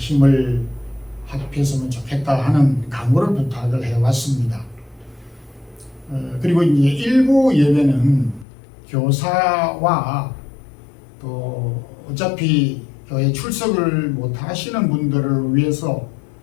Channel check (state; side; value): drops out; right; at 8.5 s